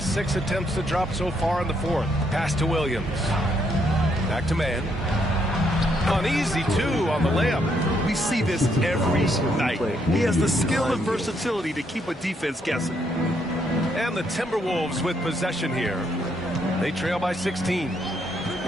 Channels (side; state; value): both; normal; correlation 0.74